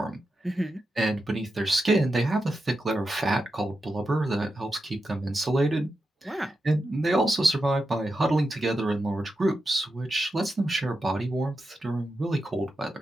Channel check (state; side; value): normal; both; correlation 0.88